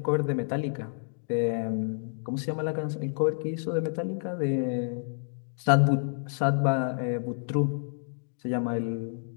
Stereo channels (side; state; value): right; silent; digital silence